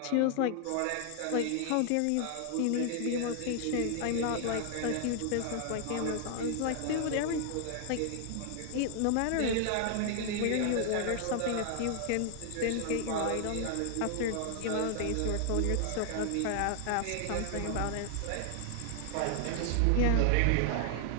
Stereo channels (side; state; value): both; different; correlation 0.00